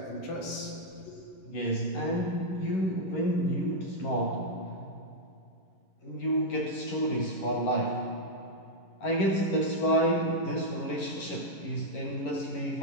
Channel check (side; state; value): right; late; 11 ms